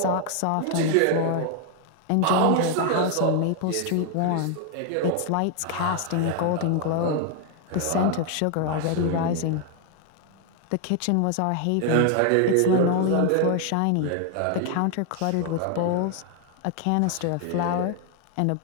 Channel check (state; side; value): different; both; correlation 0.00